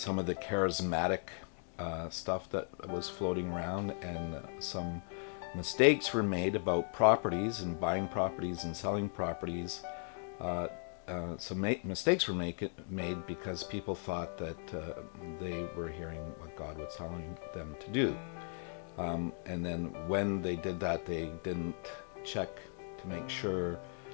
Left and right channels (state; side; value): silent; right; 53 dB below the other